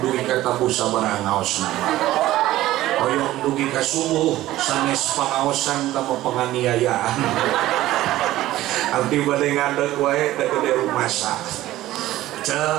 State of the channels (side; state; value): left; quieter; 15.4 dB